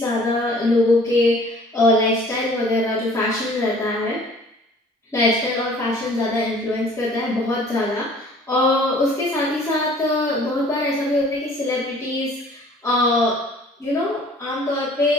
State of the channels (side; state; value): both; normal; correlation 0.52